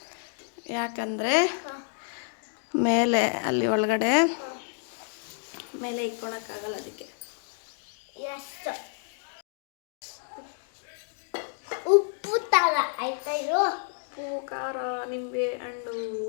ಯಾಕಂದರೆ ಮೇಲೆ ಅಲ್ಲಿ ಒಳಗಡೆ ಮೇಲೆ ಇಟ್ಕೊಳಕ್ಕಾಗಲ್ಲ, ಅದಕ್ಕೆ. ಉಪ್ಪು ತರ ಆಯ್ತಾ? ಇದು ಉಪ್ಪು, ಖಾರ, ನಿಂಬೆ ಹಣ್ಣು,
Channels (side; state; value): right; silent; 58 dB below the other